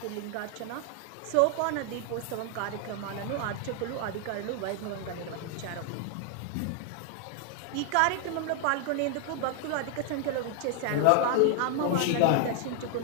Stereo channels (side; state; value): both; different; correlation 0.00